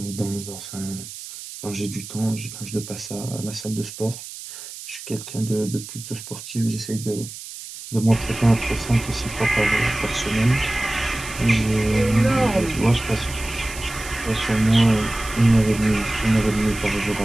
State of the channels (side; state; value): right; noise; hiss, 12 dB below the sound